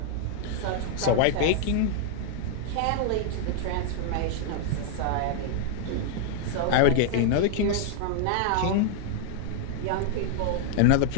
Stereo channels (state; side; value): different; both; correlation 0.00